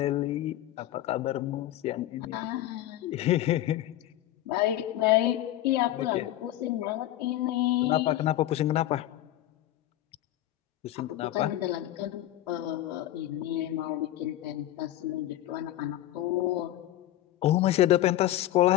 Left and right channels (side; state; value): right; quieter; 14.0 dB